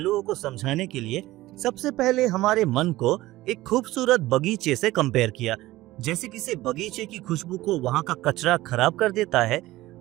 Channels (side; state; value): left; quieter; 17.3 dB